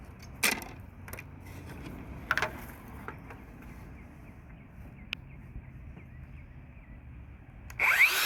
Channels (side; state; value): both; identical; correlation 1.00